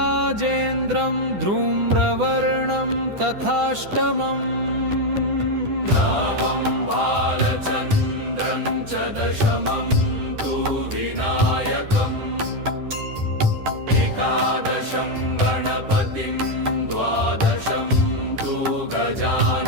धूम्रवर्णं तथाष्टमम् नवं बालचन्द्रं च दशमं तु विनायकम् एकादशं गणपतिं द्वादशं तु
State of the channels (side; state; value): left; late; 10 ms